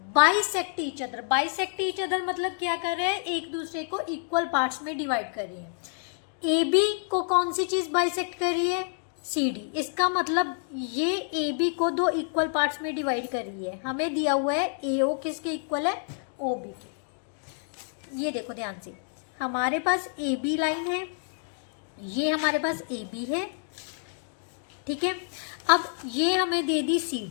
bisect each other. Bisect each other मतलब क्या कर रहे हैं, एक दूसरे को इक्वल पार्ट्स में डिवाइड कर रही है। ए बी को कौन सी चीज़ बाइसेक्ट कर रही है, सी डी। इसका मतलब ये ए बी को दो इक्वल पार्ट्स में डिवाइड कर रही है। हमें दिया हुआ है ए ओ किसके इक्वल है, ओ बी के। ये देखो ध्यान से, हमारे पास ए बी लाइन है, ये हमारे पास ए बी है, ठीक है। अब ये हमें दे दी सी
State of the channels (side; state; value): right; silent; digital silence